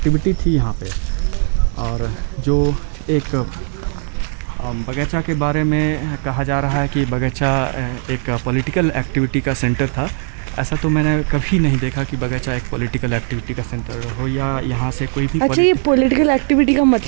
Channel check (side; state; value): left; silent; 57 dB below the other